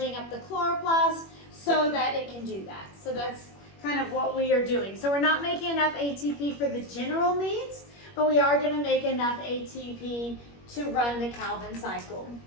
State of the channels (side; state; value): right; late; 21 ms